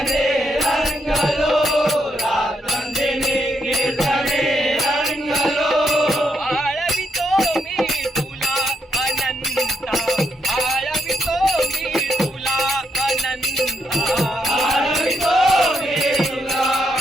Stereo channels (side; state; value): both; normal; correlation 0.79